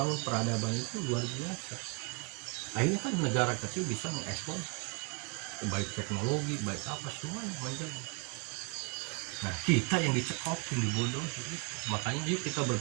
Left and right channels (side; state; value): left; quieter; 32.3 dB